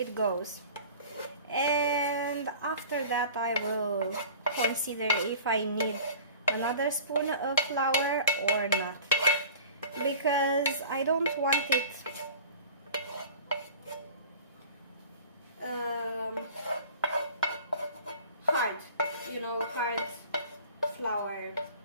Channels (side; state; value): both; inverted; correlation -0.41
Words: goes, and after that I will consider if I need another spoon of flour or not, because I don't want it hard, hard flour,